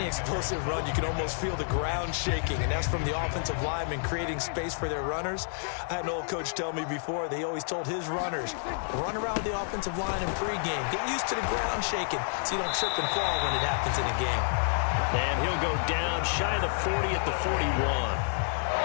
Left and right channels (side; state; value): right; silent; digital silence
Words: explosive run, you can almost feel the ground shaking, and that's from the offensive linemen creating space for their runners. I had an old coach tell me before, they always told his runners, run around the offensive line in pregame. Get used to the ground shaking so you don't trip and fall when it happens in a game. And he'll go down shy of the 40 at the 41.